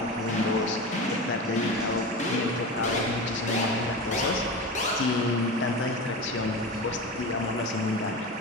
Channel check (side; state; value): both; normal; correlation 0.26